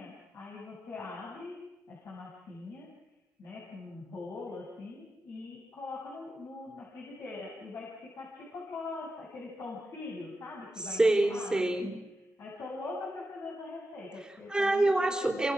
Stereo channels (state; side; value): normal; both; correlation 0.89